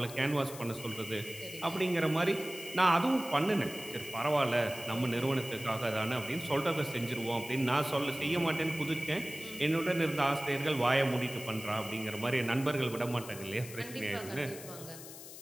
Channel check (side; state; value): left; noise; hiss, 14 dB below the sound